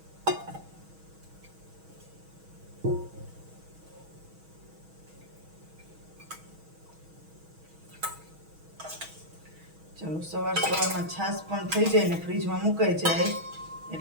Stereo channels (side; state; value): left; late; 6.2 ms